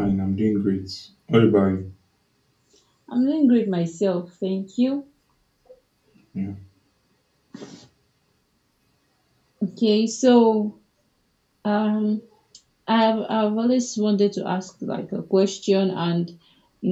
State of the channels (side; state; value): both; identical; correlation 1.00